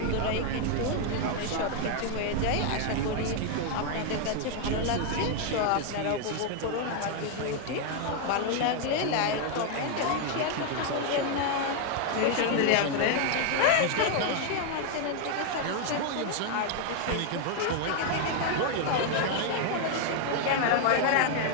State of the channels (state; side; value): different; both; correlation 0.00